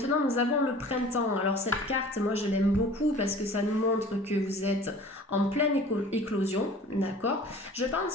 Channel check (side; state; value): both; normal; correlation 0.45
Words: nous avons le printemps. Alors cette carte, moi je l'aime beaucoup parce que ça nous montre que vous êtes en pleine éclosion, d'accord ? Je